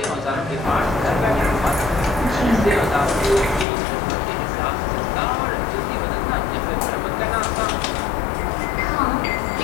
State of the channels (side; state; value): right; drops out; at 3.7 s